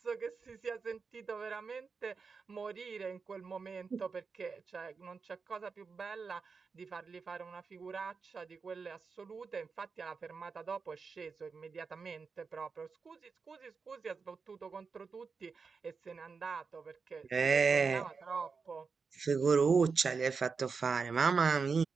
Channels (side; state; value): left; quieter; 5.1 dB